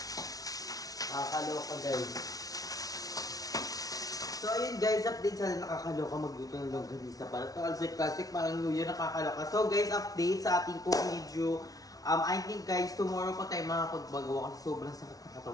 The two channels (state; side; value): late; right; 0.18 ms